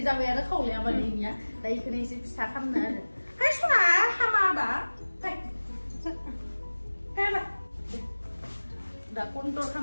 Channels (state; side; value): inverted; both; correlation -1.00